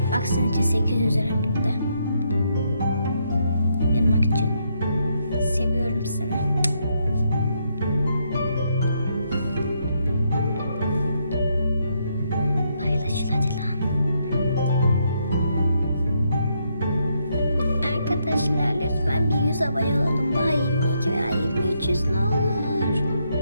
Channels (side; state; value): both; inverted; correlation -0.76